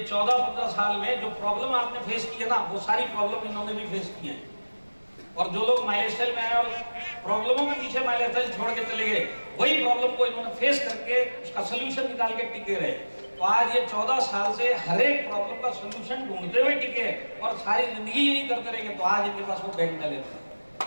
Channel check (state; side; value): inverted; both; correlation -1.00